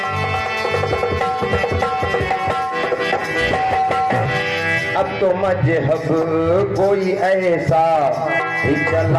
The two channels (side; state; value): both; identical; correlation 1.00